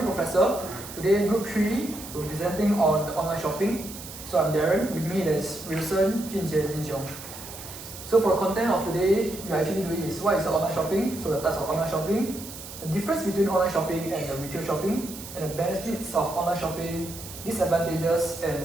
Professor. Today, Group 3, we're presenting on the online shopping. So I'm Darren. With me there's Wilson, Junjie, and Jin Xiong. So for the content of today, we're actually doing is what is the online shopping, so the types of online shopping, the difference between online shopping and the retail shopping, and the benefits of online shopping, disadvantages,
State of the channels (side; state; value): right; noise; hiss, 13 dB below the sound